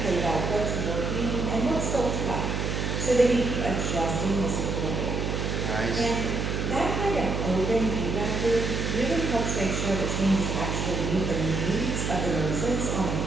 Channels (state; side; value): noise; right; hum, 1 dB below the sound